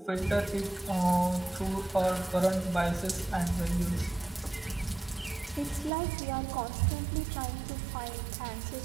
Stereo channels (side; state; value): left; drops out; at 5.9 s